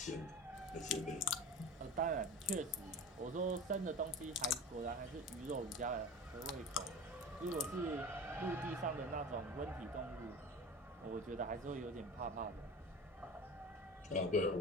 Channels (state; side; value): normal; both; correlation 0.33